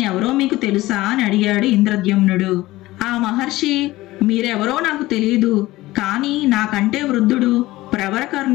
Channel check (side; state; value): right; quieter; 18.0 dB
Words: మీకు తెలుసా అని అడిగాడు ఇంద్రద్యుమ్నుడు. ఆ మహర్షి, మీరెవరో నాకు తెలియదు, కానీ నాకంటే వృద్ధుడు